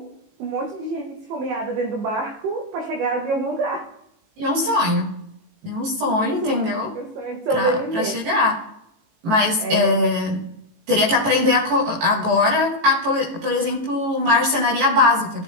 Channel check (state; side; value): late; left; 18 ms